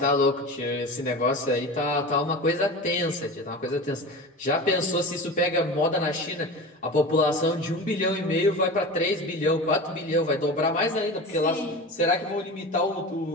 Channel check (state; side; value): normal; both; correlation 0.31